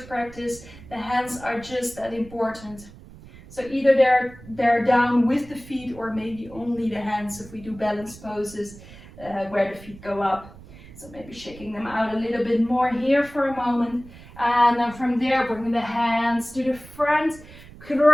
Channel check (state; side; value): noise; right; rumble, 19 dB below the sound